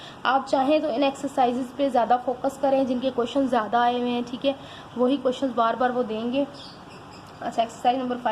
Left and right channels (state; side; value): identical; both; correlation 1.00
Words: आप चाहें तो इन एक्सरसाइजेज पे ज़्यादा फोकस करें, जिनके क्वेश्चन ज़्यादा आए हुए हैं, ठीक है, वही क्वेश्चंस बार बार वो देंगे। अच्छा, एक्सरसाइज नंबर